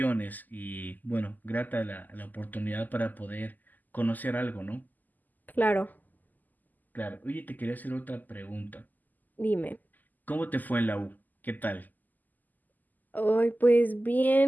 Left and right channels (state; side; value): late; right; 0.084 ms